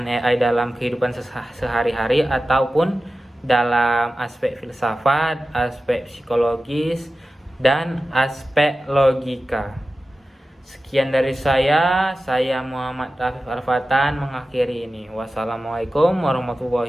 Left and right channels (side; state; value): both; normal; correlation 0.94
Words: AI dalam kehidupan sehari-hari ataupun dalam aspek filsafat, aspek psikologis, dan aspek logika. Sekian dari saya Muhammad Rafif Arfatan mengakhiri ini. Wassalamualaikum